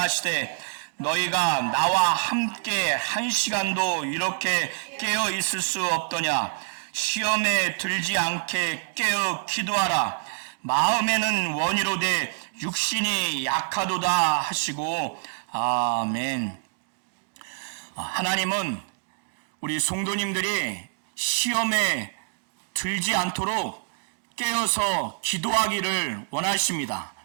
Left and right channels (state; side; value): silent; left; digital silence